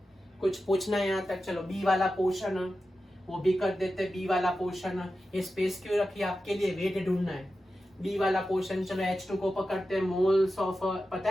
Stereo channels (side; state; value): both; normal; correlation 0.92